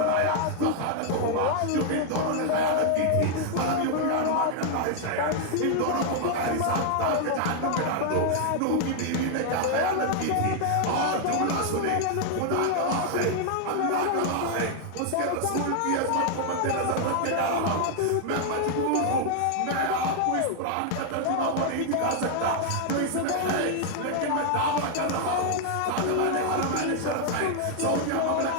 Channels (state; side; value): different; both; correlation 0.00